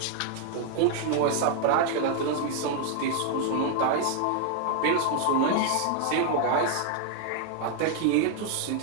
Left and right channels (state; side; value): different; both; correlation 0.00